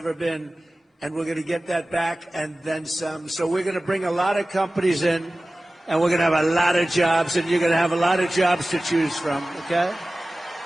been. And we're going to get that back and then some. So we're going to bring a lot of companies in, and we're going to have a lot of jobs, and you're going to have a lot of jobs to choose from, okay?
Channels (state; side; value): normal; both; correlation 0.97